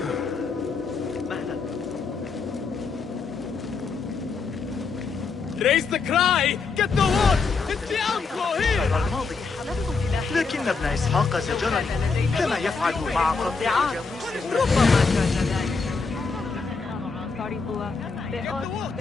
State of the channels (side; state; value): right; quieter; 4.6 dB